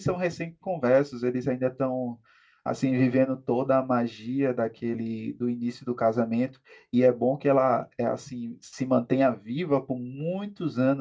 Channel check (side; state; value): both; identical; correlation 1.00